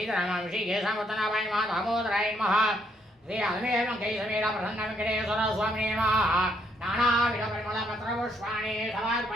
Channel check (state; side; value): normal; both; correlation 0.72